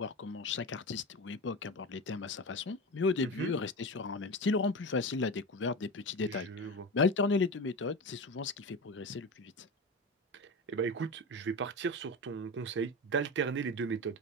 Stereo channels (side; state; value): both; normal; correlation 0.24